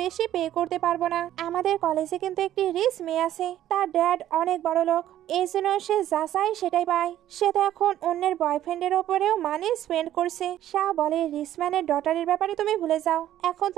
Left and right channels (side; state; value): left; quieter; 12.4 dB